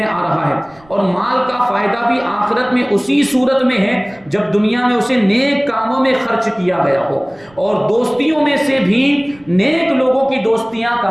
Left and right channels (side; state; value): right; noise; rumble, 29 dB below the sound